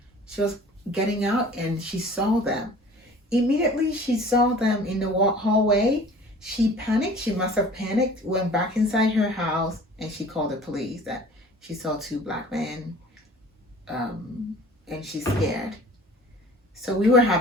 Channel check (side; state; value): both; normal; correlation 0.46